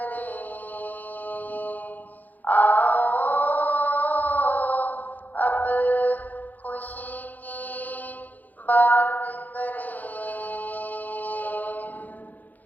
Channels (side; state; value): right; late; 0.083 ms